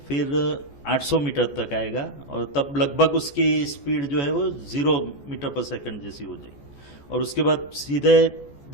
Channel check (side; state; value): right; late; 14 ms